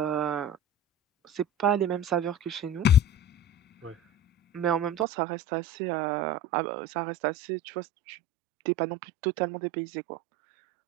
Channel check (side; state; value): left; drops out; at 5.1 s